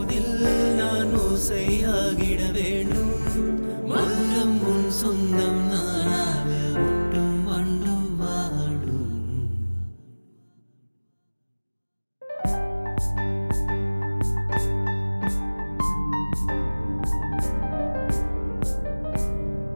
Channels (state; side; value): inverted; both; correlation -1.00